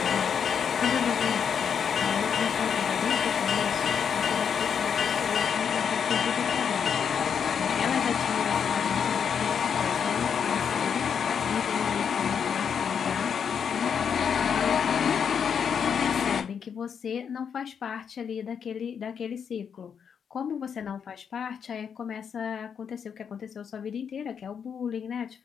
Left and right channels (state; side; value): quieter; right; 7.2 dB